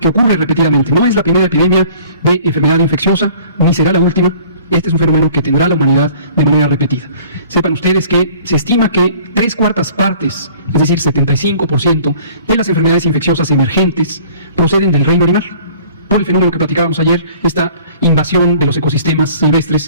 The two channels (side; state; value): both; inverted; correlation -0.50